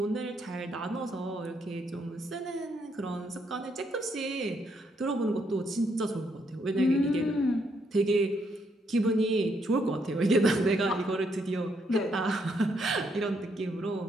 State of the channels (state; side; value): normal; both; correlation 0.74